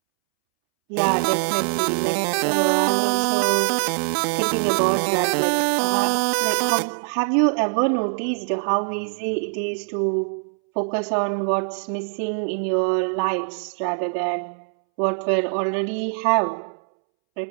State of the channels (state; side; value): silent; left; 64 dB below the other